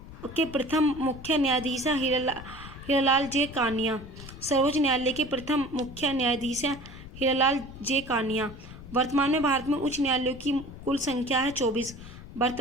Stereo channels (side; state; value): left; noise; rumble, 15 dB below the sound